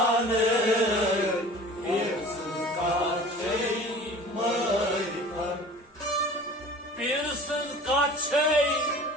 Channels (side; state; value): both; normal; correlation 0.42